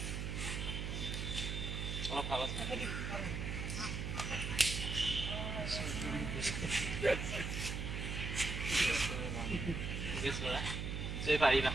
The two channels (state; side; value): noise; right; hum, 3 dB below the sound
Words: অলপ ভাবক গেছ কৰা সেই পাৰিবা